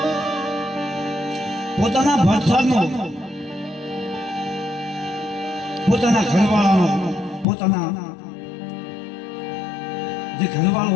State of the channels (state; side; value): drops out; right; at 7.5 s